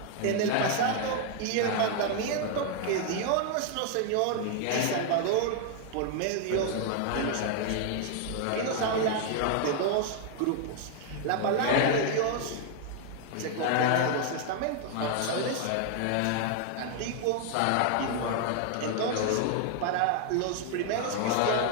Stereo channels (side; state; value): both; different; correlation 0.00